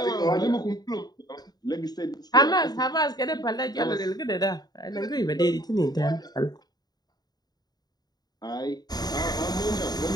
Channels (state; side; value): late; right; 0.19 ms